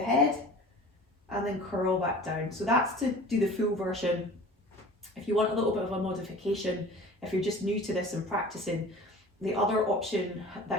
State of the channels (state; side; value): normal; both; correlation 0.42